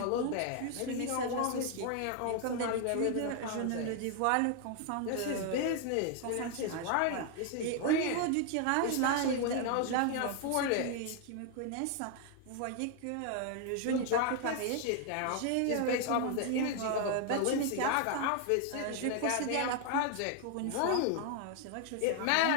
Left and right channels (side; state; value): both; different; correlation 0.00